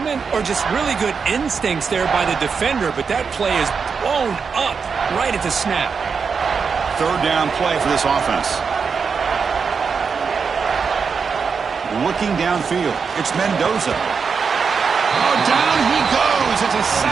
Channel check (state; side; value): quieter; left; 5.7 dB